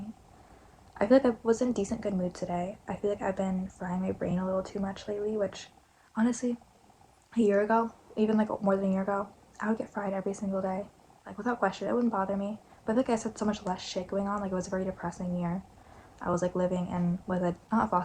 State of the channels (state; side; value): identical; both; correlation 1.00